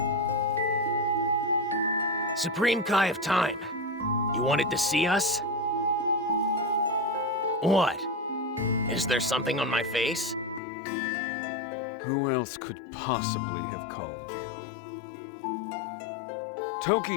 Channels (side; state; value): right; drops out; at 10.6 s